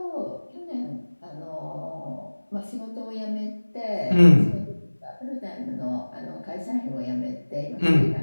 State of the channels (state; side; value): inverted; both; correlation -1.00